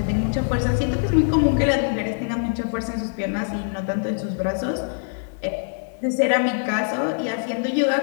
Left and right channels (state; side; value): silent; right; digital silence